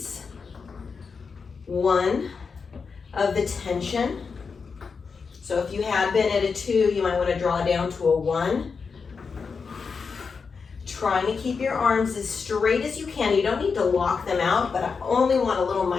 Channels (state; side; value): quieter; right; 5.3 dB